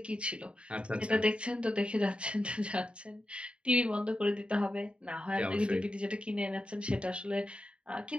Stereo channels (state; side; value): late; left; 0.057 ms